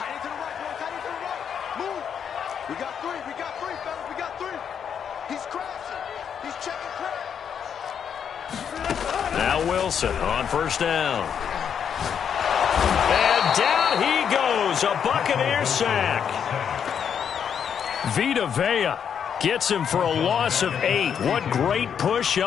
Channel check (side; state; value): right; quieter; 7.8 dB